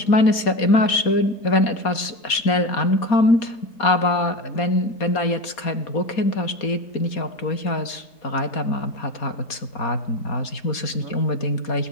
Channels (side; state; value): right; late; 4.2 ms